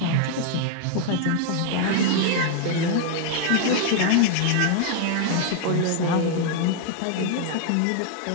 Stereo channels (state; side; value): different; both; correlation 0.00